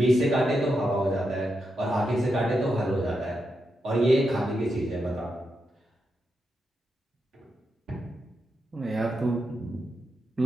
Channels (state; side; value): normal; both; correlation 0.85